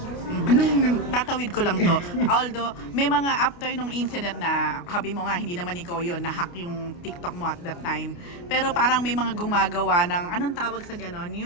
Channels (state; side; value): late; right; 29 ms